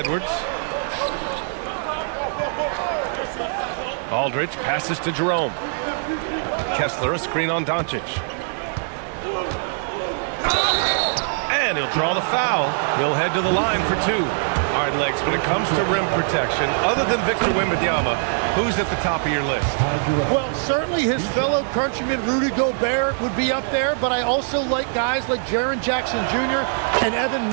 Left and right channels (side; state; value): left; silent; digital silence